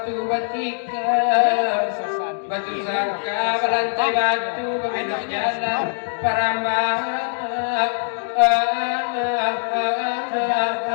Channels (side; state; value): right; silent; digital silence